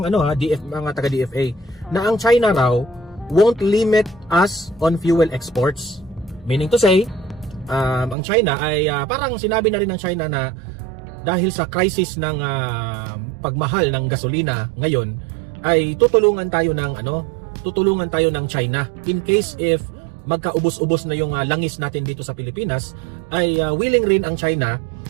mga taga DFA, na ang China raw won't limit us on fuel exports. Meaning to say, ang China ay parang sinabi na rin ng China na dahil sa crisis ng pagmahal ng gasolina ngayon, ay tutulungan tayo ng China in case if magkaubos-ubos na yung langis natin dito sa Pilipinas, ay willing rin ang China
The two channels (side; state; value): left; drops out; at 8.2 s